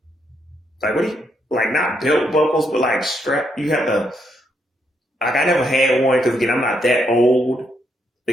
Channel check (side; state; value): both; normal; correlation 0.77